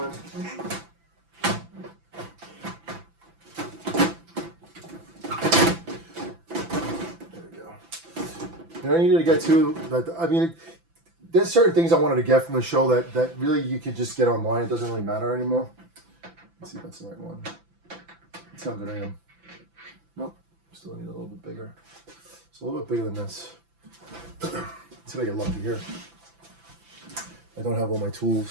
in. And I needed to get to that. I mean, there's certain things I wanted to get from the show that really you can just get online. It doesn't really matter anymore. Let's see if that's the right one. That's how good I am. Nope, still need a little bit bigger. It's a little bit bigger than this. Let's see if I get lucky here. I don't have all my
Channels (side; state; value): left; late; 5.9 ms